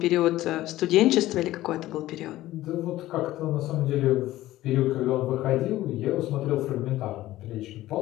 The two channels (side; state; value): right; quieter; 15.6 dB